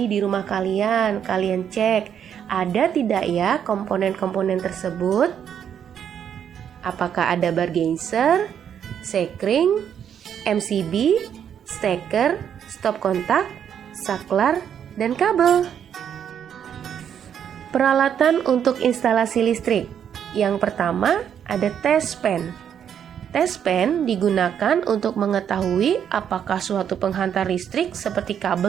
di rumah kalian, kalian cek ada tidak ya komponen-komponen tersebut. Apakah ada bar geyser, sekring, MCB, steker, stop kontak, saklar, dan kabel. Peralatan untuk instalasi listrik. Yang pertama ada test pen. Test pen digunakan untuk mengetahui apakah suatu penghantar listrik seperti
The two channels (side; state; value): left; quieter; 8.7 dB